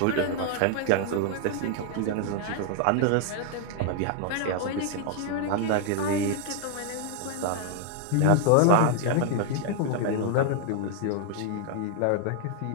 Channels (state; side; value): different; both; correlation 0.00